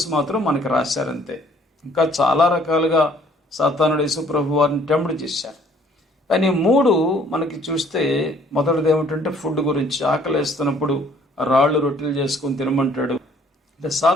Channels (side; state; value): both; normal; correlation 0.59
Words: మాత్రం మనకి రాశారంతే. ఇంకా చాలా రకాలుగా సాతానుడు యేసు ప్రభు వారిని టెంప్ట్ చేశారు. కానీ 3 మనకి చూస్తే మొదటిది ఏమిటంటే ఫుడ్ గురించి. ఆకలేస్తున్నప్పుడు రాళ్ళు రొట్టెలు చేసుకుని తినమంటాడు. అంటే